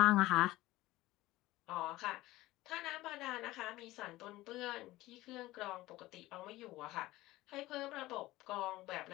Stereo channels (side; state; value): right; quieter; 17.7 dB